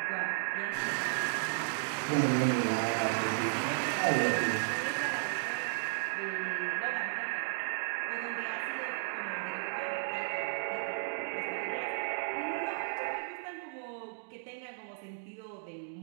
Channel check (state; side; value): silent; left; digital silence